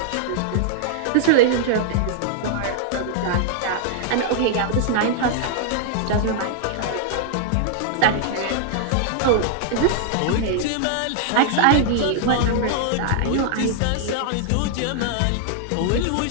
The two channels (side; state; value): both; different; correlation -0.01